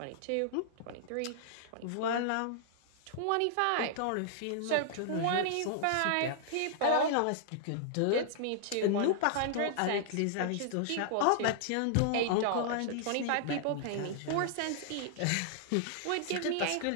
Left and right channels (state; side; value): different; both; correlation -0.01